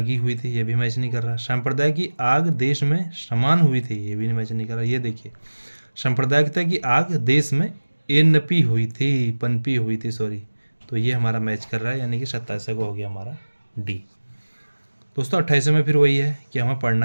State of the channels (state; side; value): inverted; both; correlation -1.00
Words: हुई थी, ये भी मैच नहीं कर रहा। संप्रदाय की आग देश में समान हुई थी, ये भी मैच नहीं कर रहा। ये देखिए सांप्रदायिकता की आग देश में पनपी हुई थी सॉरी, तो ये हमारा मैच कर रहा है, यानी कि 27 को हो गया हमारा डी। दोस्तों 28 में फिर वही है कि हमें पढ़ना